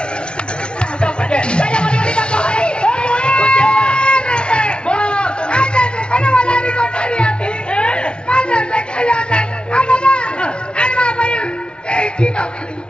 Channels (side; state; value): right; late; 0.056 ms